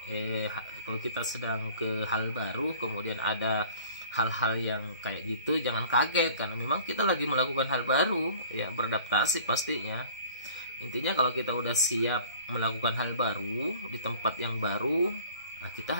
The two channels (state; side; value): inverted; both; correlation -0.49